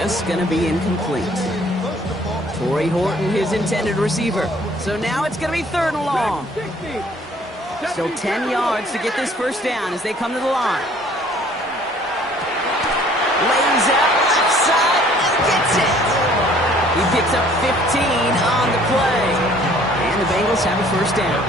going to be incomplete. Torrey Horton, his intended receiver. So now it's going to be third and long. 60. Still 10 yards to get this first down as they come to the line. Lays out left side and gets it. He picks up 15 on the play. And the Bengals have a first down.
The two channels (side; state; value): both; normal; correlation 0.57